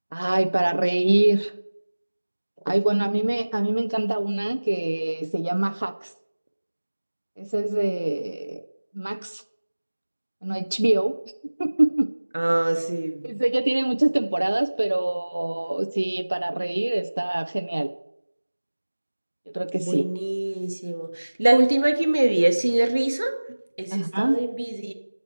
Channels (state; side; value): inverted; both; correlation -1.00